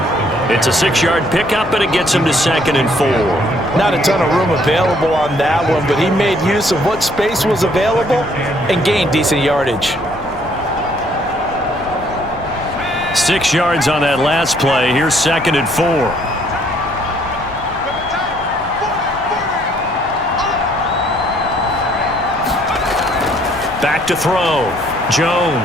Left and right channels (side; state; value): left; noise; rumble, 18 dB below the sound